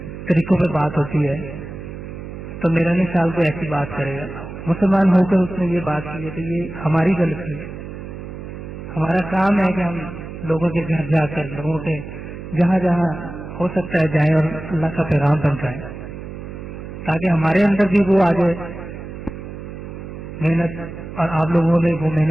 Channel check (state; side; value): noise; right; hum, 10 dB below the sound